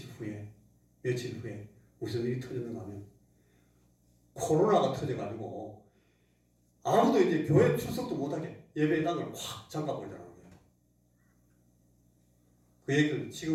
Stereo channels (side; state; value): both; identical; correlation 1.00